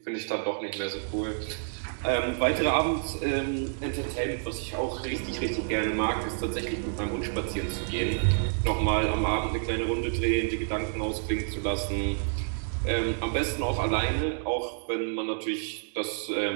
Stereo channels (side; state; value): left; silent; digital silence